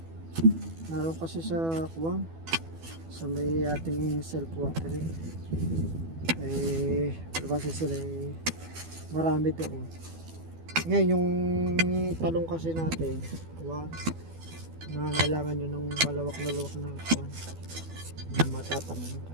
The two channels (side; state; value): left; late; 12 ms